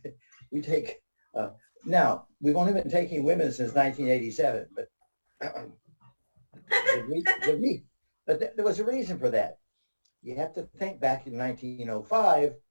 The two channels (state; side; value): inverted; both; correlation -1.00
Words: We take. Now we've only been taking women since 1987, but there was a reason for that. You have to think back in 1905,